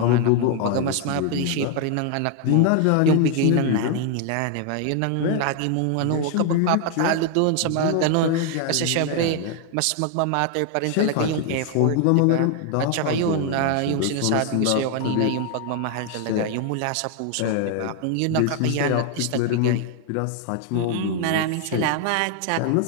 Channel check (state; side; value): different; both; correlation 0.00